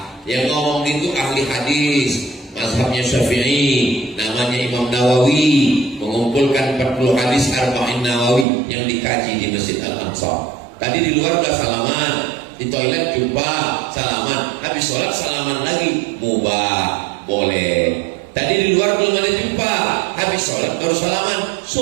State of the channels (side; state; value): left; drops out; at 8.5 s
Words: Yang ngomong itu ahli hadis, mazhabnya Syafi'i, namanya Imam Nawawi, mengumpulkan 40 hadis Arba'in Nawawi yang dikaji di Masjid Al-Ansar. Tadi di luar udah salaman, di toilet jumpa salaman, habis sholat salaman lagi, mubah, boleh. Tadi di luar belum ada jumpa, habis sholat baru salaman,